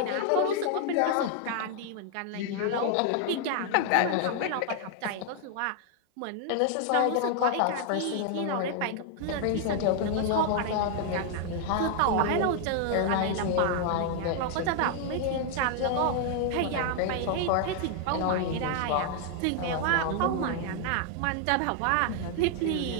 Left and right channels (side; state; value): both; different; correlation 0.00